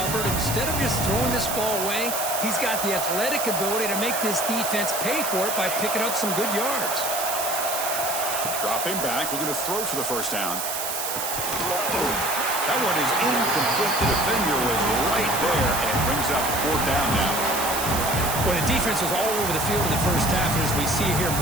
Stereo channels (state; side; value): noise; right; hiss, 3 dB below the sound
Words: Instead of just throwing this ball away, he's got the athletic ability to make this defense pay for it by picking up some good yards. Dropping back, looking to throw for the first down. That one is incomplete. The defender was right there and brings up 4th down now. Well, the defense was all over the field in the first half, and as we see here,